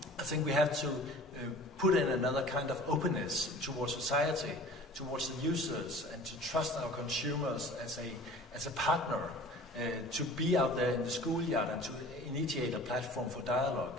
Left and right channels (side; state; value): both; normal; correlation 0.44